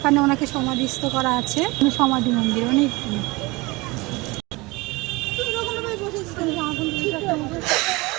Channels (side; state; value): left; quieter; 23.8 dB